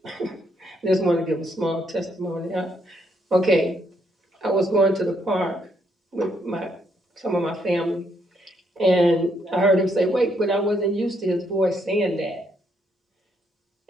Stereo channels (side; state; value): both; normal; correlation 0.74